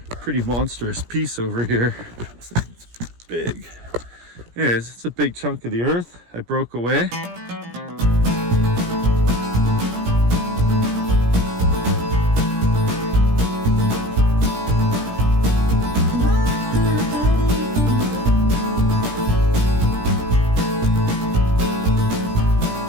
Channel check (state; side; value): late; left; 17 ms